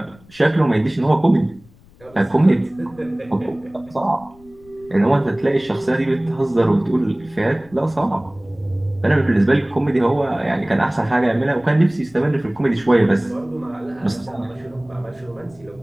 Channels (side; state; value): left; noise; rumble, 26 dB below the sound